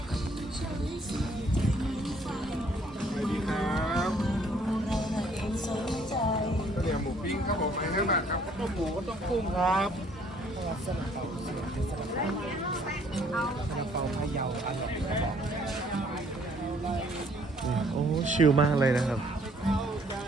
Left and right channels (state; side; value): normal; both; correlation 0.62